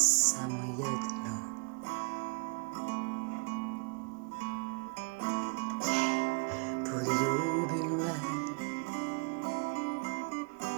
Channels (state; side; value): quieter; left; 35.2 dB